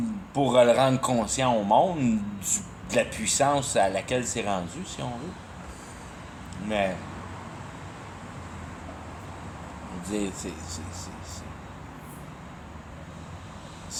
pour le rendre conscient au monde de la puissance à laquelle c'est rendu, si on veut. Mais,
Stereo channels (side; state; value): both; identical; correlation 1.00